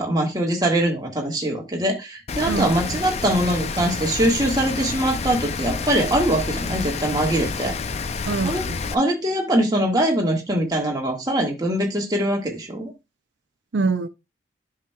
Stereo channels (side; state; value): both; normal; correlation 0.55